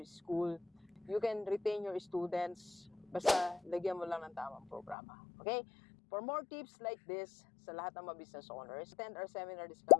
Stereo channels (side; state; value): right; drops out; at 5.0 s